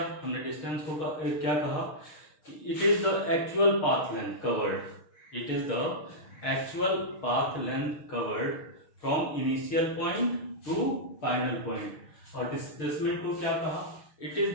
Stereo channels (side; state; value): right; late; 6.4 ms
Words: हमने डिस्टेंस को क्या कहा कि it is the actual path length covered, it is the actual path length covered from initial point two final point. और डिस्प्लेसमेंट को क्या कहा? It is